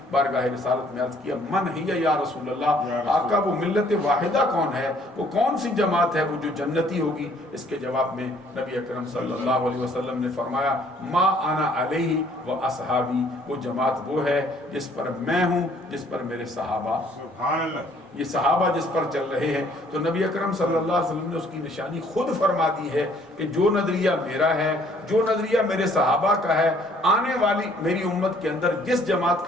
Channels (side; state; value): both; normal; correlation 0.61